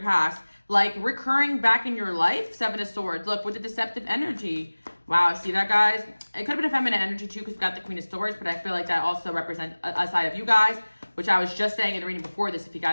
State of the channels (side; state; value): both; inverted; correlation -1.00